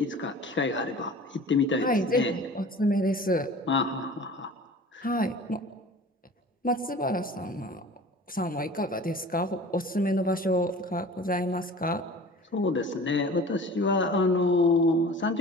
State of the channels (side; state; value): both; normal; correlation 0.42